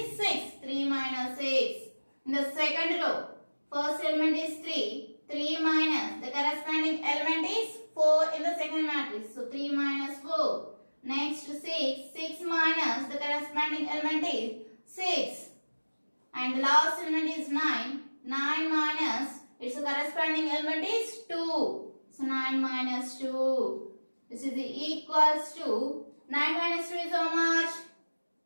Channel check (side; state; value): both; inverted; correlation -1.00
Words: 6. 3 minus 6. In the second row, first element is 3. 3 minus, the corresponding element is 4 in the second matrix. So, 3 minus 4. Next to 6. 6 minus the corresponding element is 6. And the last element is 9. 9 minus its corresponding element is 2. So 9 minus 2. This is equals to 9 minus 2 is how much?